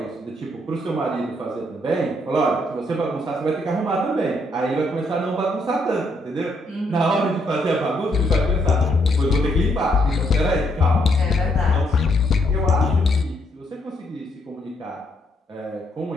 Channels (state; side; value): normal; both; correlation 0.73